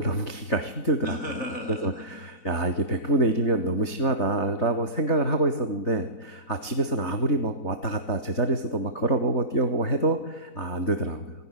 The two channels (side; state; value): right; late; 4.0 ms